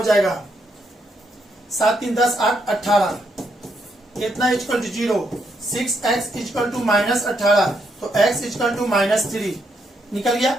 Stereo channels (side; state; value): both; normal; correlation 0.77